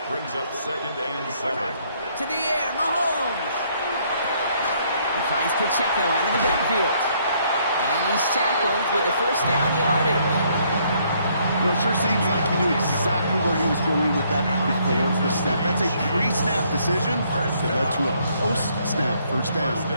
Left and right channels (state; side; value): inverted; both; correlation -0.68